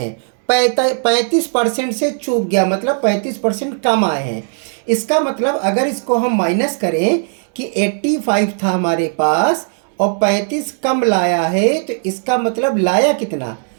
35% से चूक गया, मतलब 35% कम आए हैं। इसका मतलब अगर इसको हम माइनस करें कि 85 था हमारे पास और 35 कम लाया है, तो इसका मतलब लाया कितना?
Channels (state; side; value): silent; left; 68 dB below the other